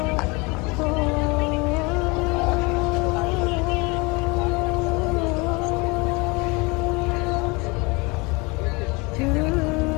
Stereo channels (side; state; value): right; quieter; 27.1 dB